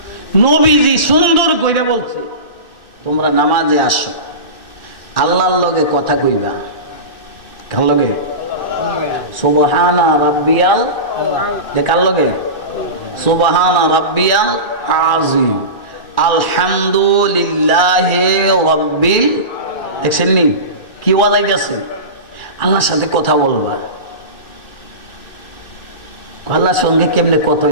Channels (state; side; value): late; right; 2.6 ms